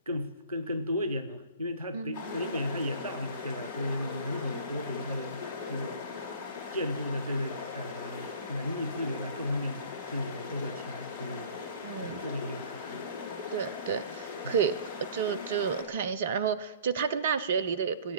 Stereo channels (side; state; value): both; inverted; correlation -0.49